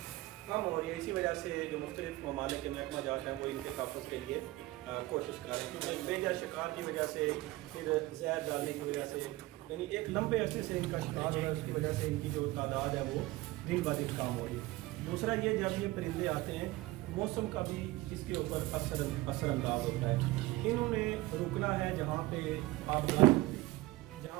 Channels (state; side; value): quieter; left; 19.2 dB